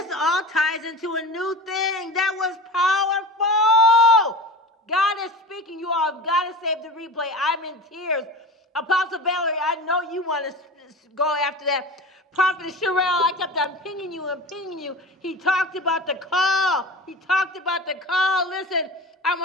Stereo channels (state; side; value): normal; both; correlation 0.32